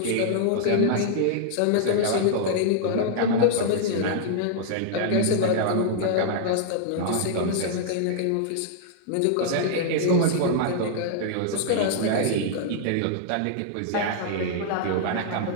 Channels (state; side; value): different; both; correlation -0.01